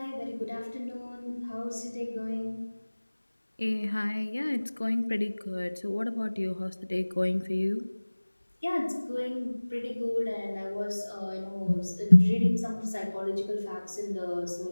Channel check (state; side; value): inverted; both; correlation -1.00